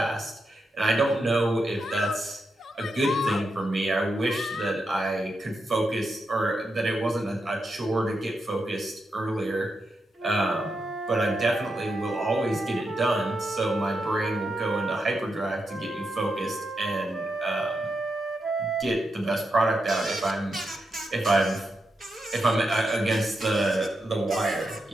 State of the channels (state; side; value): normal; both; correlation 0.85